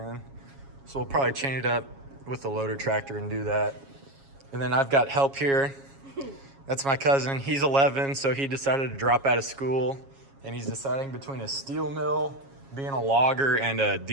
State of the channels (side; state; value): left; late; 7.3 ms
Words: So we'll probably chain it up with the loader tractor and do that. And then I've got help here. That's my cousin. He's 11, so he decided to drop out of school, and he's deciding between a steel mill, being a logger, and a